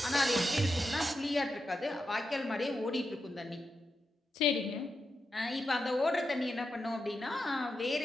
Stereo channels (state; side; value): normal; both; correlation 0.87